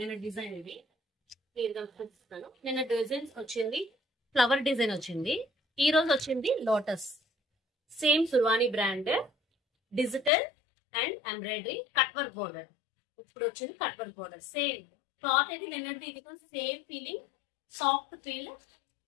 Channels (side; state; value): right; drops out; at 10.3 s